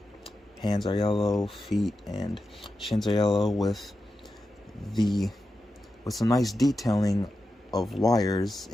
hands are yellow, feet and shins are yellow with some nice detailing of wires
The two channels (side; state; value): both; normal; correlation 0.90